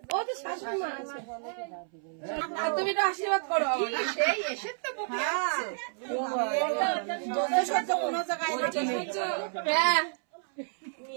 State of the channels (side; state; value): left; silent; 58 dB below the other